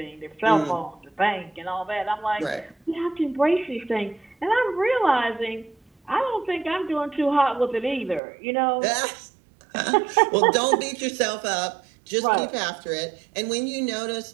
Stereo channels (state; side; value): drops out; left; at 8.2 s